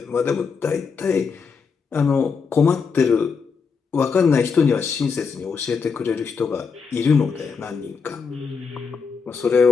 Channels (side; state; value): right; quieter; 5.5 dB